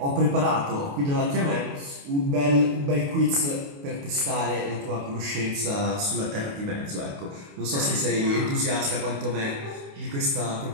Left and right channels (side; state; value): left; late; 28 ms